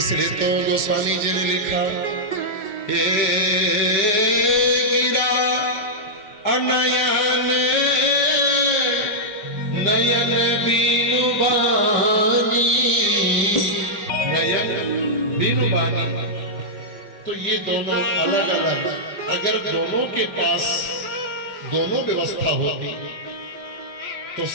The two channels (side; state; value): right; late; 5.2 ms